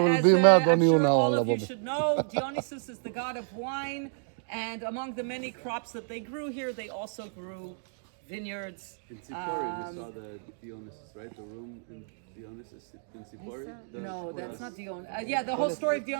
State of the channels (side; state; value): left; silent; digital silence